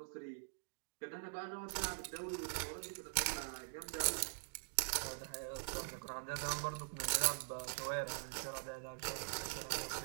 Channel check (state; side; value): silent; left; digital silence